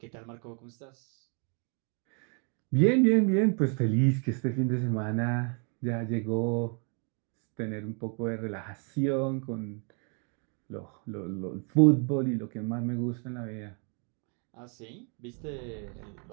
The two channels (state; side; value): quieter; left; 38.7 dB